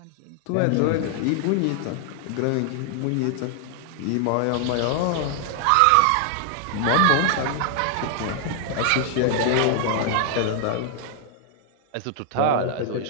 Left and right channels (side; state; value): both; different; correlation 0.00